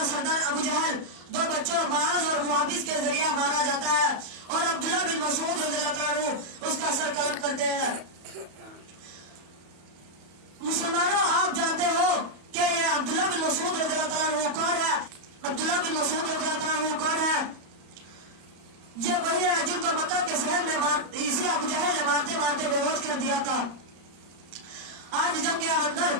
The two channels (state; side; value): late; left; 34 ms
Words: سردار ابو جہل دو بچوں معاذ اور محافظ کے ذریعہ مارا جاتا ہے اور عبداللہ بن مسعود رضی اللہ تعالیٰ عنہ اس کا سر قلم کرتے ہیں. مسلمانوں آپ جانتے ہو کہ یہ عبداللہ بن مسعود رضی اللہ تعالیٰ عنہ کون ہے؟ عبداللہ بن مسعود رضی اللہ تعالیٰ عنہ کون ہے؟ یہ وہی ہے جن کو مکہ کے شہر میں اسی ابو جہل نے مارتے مارتے بے ہوش کر دیا تھا. آج جنگ کے اندر